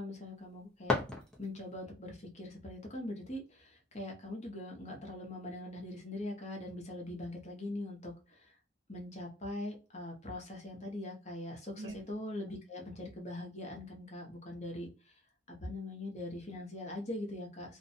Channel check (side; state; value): both; normal; correlation 0.54